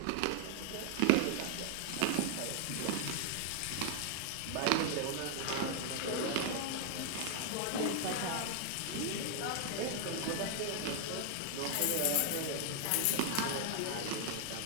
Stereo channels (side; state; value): both; different; correlation 0.00